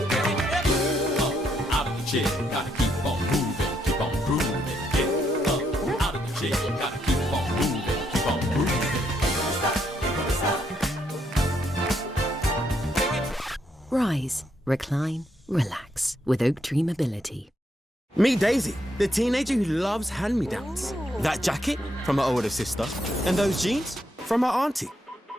Chair, gotta keep on moving, keep on grooving. Get up out of the chair, gotta keep on moving, keep on grooving. Rise, recline, relax with Oak Tree Mobility. Meet Daisy, the teenager who loves hand-me-downs. That jacket from her older sister, and those jeans from her auntie.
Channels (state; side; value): normal; both; correlation 0.76